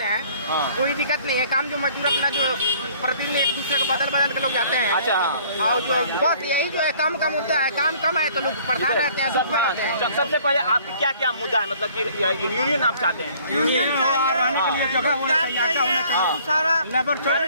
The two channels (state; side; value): inverted; both; correlation -0.56